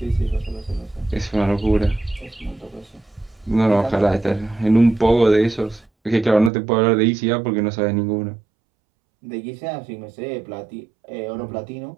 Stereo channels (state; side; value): drops out; left; at 6.5 s